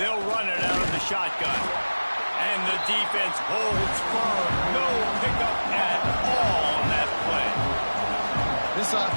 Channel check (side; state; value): both; inverted; correlation -1.00